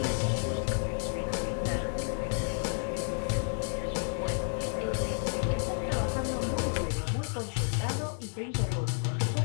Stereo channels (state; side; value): silent; right; 57 dB below the other